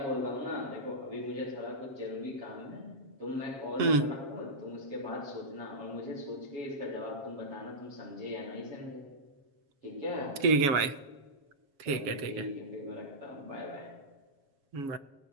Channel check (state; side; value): late; left; 7.3 ms